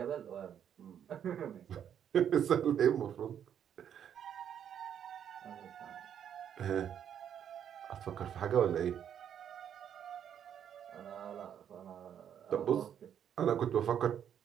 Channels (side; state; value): left; quieter; 9.1 dB